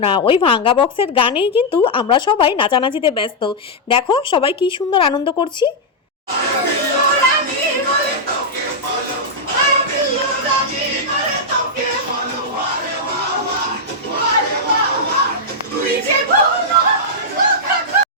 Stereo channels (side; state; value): both; normal; correlation -0.05